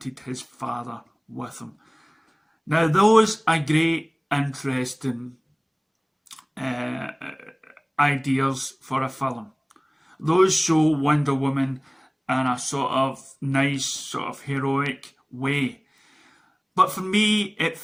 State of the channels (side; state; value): both; identical; correlation 1.00